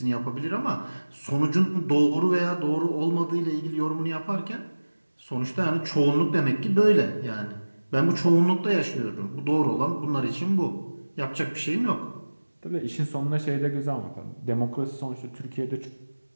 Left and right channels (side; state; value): both; inverted; correlation -1.00